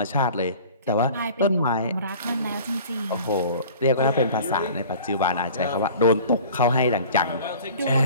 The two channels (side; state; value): both; inverted; correlation -0.45